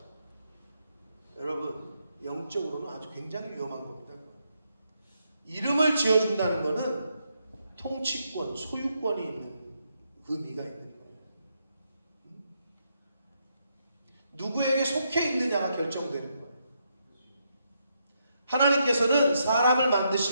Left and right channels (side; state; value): both; inverted; correlation -0.79